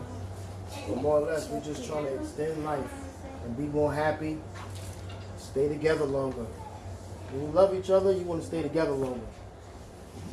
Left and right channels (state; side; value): identical; both; correlation 1.00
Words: But more or less, we're just trying to extend life and be more happy, stay together longer. When you love each other, you want to stay together longer.